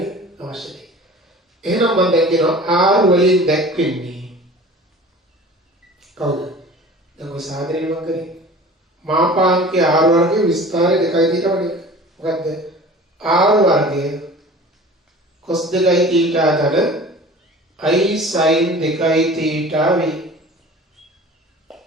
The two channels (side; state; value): both; normal; correlation 0.42